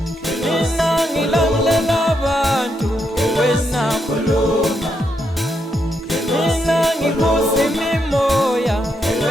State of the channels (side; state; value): both; normal; correlation 0.80